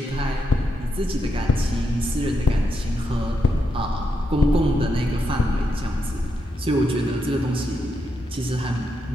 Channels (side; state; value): both; normal; correlation 0.82